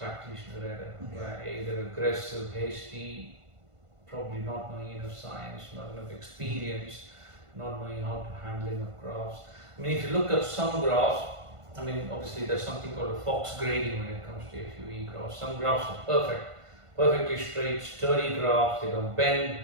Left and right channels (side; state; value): left; late; 1.5 ms